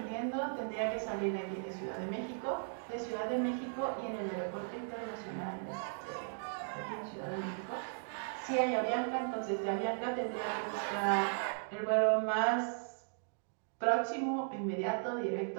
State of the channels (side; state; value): left; silent; digital silence